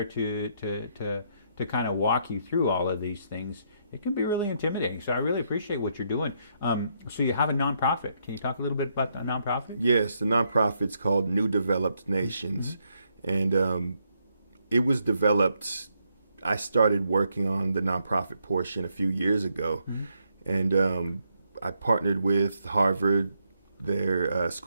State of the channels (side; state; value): both; inverted; correlation -0.76